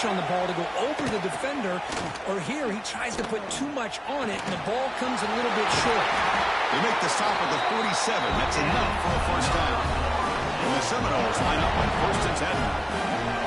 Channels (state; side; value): identical; both; correlation 1.00